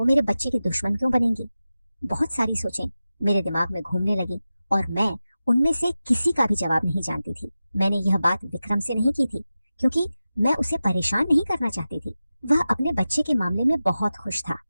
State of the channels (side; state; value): both; inverted; correlation -0.94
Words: मेरे बच्चे की दुश्मन क्यों बनेंगी? बहुत सारी सोचें मेरे दिमाग में घूमने लगी और मैं उनमें से किसी का भी जवाब नहीं जानती थी। मैंने यह बात विक्रम से नहीं की थी, क्योंकि मैं उसे परेशान नहीं करना चाहती थी। वह अपने बच्चे के मामले में बहुत खुश था